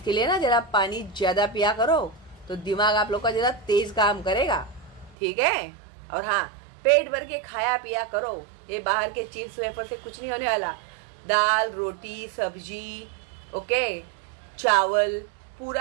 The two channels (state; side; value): drops out; left; at 5.2 s